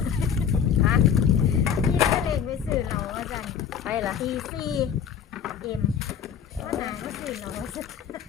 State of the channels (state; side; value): quieter; right; 8.0 dB